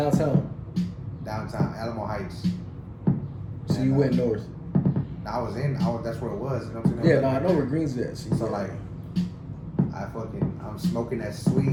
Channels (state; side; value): identical; both; correlation 1.00